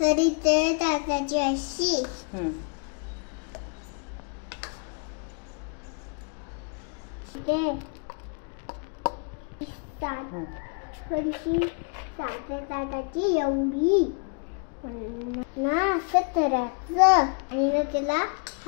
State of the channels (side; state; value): right; quieter; 38.8 dB